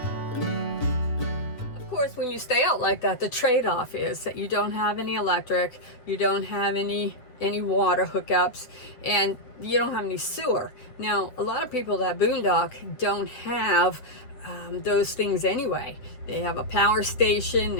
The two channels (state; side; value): late; right; 8.2 ms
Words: When you stay out like that, the trade-off is that you don't have any electric, you don't have any water hookups, and you don't have any sewer. Now, a lot of people that boondock don't have those things anyway. They have a power station,